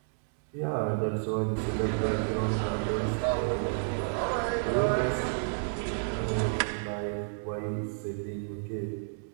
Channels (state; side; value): silent; left; digital silence